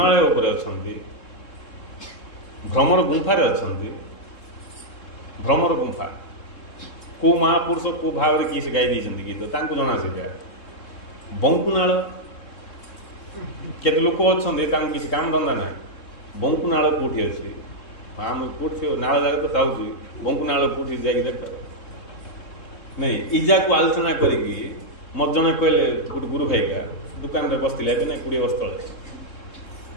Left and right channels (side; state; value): right; late; 3.7 ms